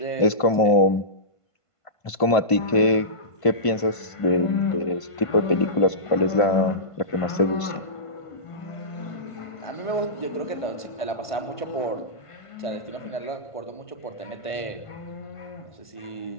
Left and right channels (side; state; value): right; late; 1.5 ms